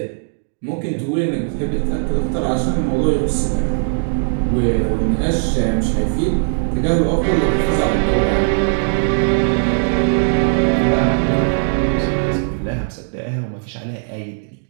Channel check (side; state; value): left; silent; digital silence